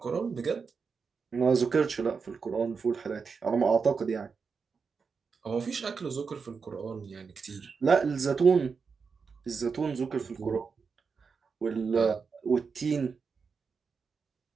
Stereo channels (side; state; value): left; quieter; 5.4 dB